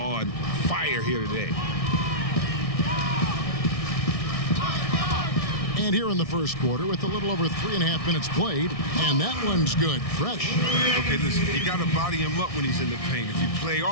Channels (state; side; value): late; right; 1.6 ms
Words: fire here today. And here in the first quarter with a little over 3.5 minutes played, and that one's good, fresh. Okay, listen, you got to body him up when he's in the paint. If you play